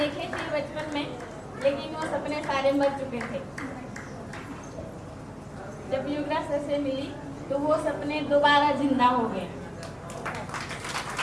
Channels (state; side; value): identical; both; correlation 1.00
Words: थे बचपन में, लेकिन वो सपने सारे मर चुके थे। जब युवराज सर से मिली तो वो सपने दोबारा जिंदा हो गए।